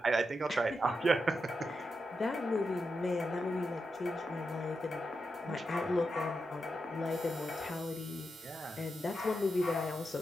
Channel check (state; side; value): normal; both; correlation 0.87